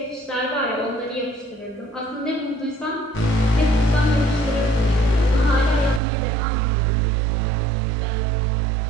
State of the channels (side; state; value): left; drops out; at 6.0 s